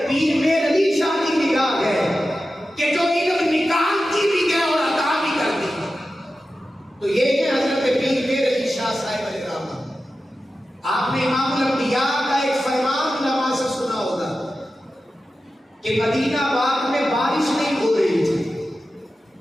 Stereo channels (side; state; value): both; normal; correlation 0.93